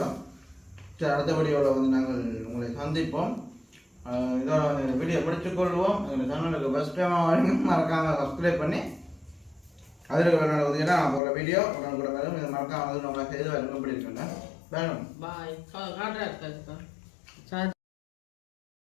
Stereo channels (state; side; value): drops out; right; at 11.2 s